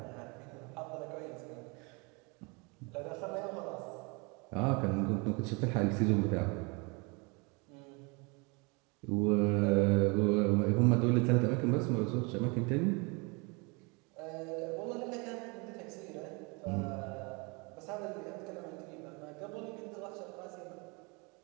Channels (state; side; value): quieter; left; 29.8 dB